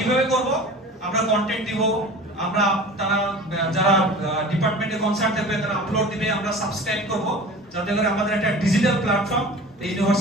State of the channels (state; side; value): normal; both; correlation 0.39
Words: করব? আমরা কন্টেন্ট দিব, আমরা তারা যারা ডিপার্টমেন্টে কনসার্ট দেবে তারা আপলোড দিবে, আমরা সাবস্ক্রাইব করব, যাতে করে আমাদের একটা ডিজিটাল প্ল্যাটফর্ম এই